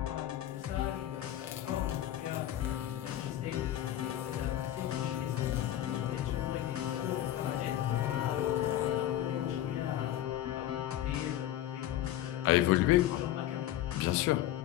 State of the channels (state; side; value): quieter; right; 12.8 dB